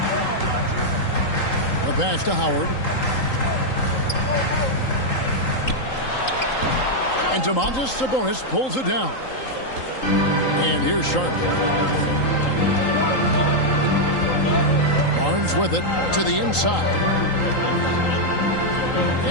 The pass to Howard. And Domantas Sabonis pulls it down. And here's Charlotte. Barnes with it to the inside.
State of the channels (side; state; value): right; late; 3.8 ms